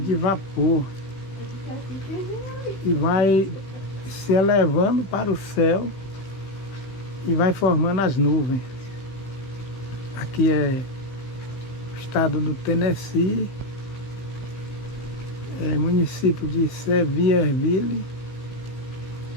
vapor, e vai se elevando para o céu e vai formando as nuvens. Aqui é o estado do Tennessee, município de Sevierville,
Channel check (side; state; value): right; late; 16 ms